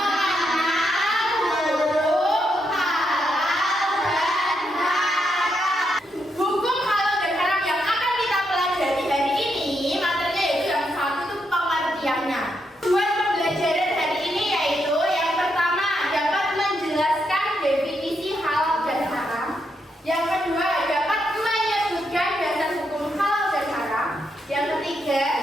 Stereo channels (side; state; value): both; normal; correlation 0.80